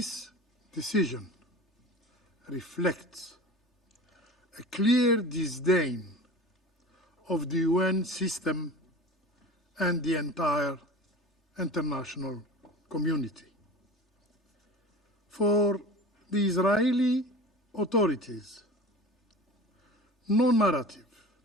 decision reflects a clear disdain of the UN system and the entire international community. For the Israeli authorities, no narrative,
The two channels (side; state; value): both; normal; correlation 0.36